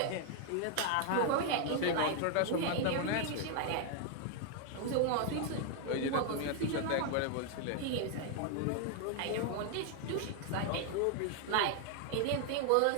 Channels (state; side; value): different; both; correlation 0.00